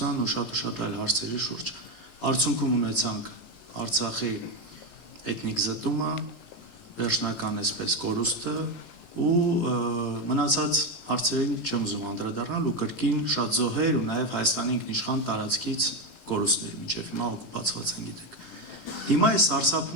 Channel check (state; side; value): late; right; 18 ms